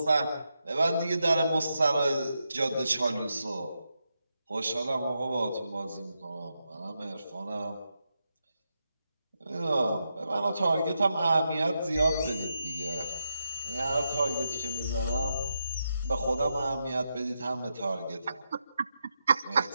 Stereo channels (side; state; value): both; inverted; correlation -0.85